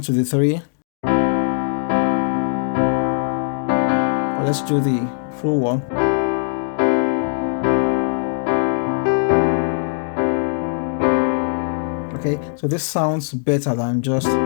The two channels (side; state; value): right; silent; digital silence